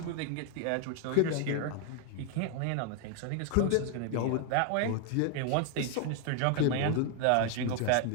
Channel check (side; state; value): both; different; correlation 0.00